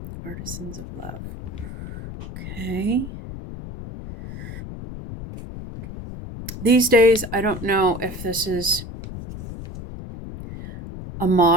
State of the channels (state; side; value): noise; left; rumble, 10 dB below the sound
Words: Artisans of Love. Okay. These days, I don't know if this is a